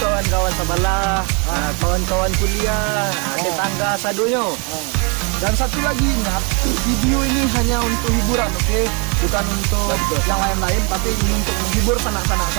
sebelah, kawan-kawan kuliah, tetangga sadonyo. Dan satu lagi ingat, video ini hanya untuk hiburan, oke? Bukan untuk yang lain-lain, tapi ini untuk menghibur sanak-sanak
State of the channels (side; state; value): left; quieter; 33.4 dB